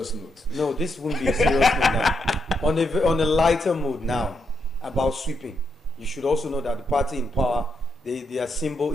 note. no, this won't be a serious note now. On a lighter mood now about sweeping, you should also know that the party in power, their symbol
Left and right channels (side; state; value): both; normal; correlation 0.80